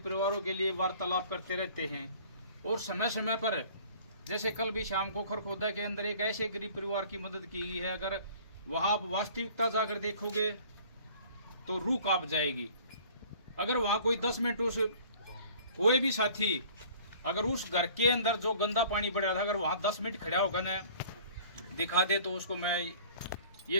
परिवारों के लिए वार्तालाप करते रहते हैं। और समय समय पर, जैसे कल भी शाम को खरखोदा के अंदर एक ऐसे गरीब परिवार की मदद की है, अगर वहाँ आप वास्तविकता जाकर देखोगे तो रूह कांप जाएगी। अगर वहाँ कोई 10 मिनट उस कोई भी साथी अगर उस घर के अंदर जो गंदा पानी पड़ रहा था, अगर वहाँ 10 मिनट खड़ा होकर न दिखा दे तो उसको मैं ये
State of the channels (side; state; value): both; inverted; correlation -0.51